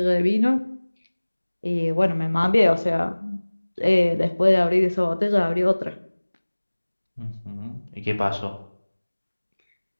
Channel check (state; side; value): inverted; both; correlation -1.00